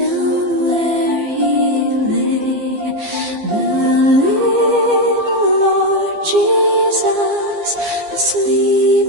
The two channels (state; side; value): late; left; 15 ms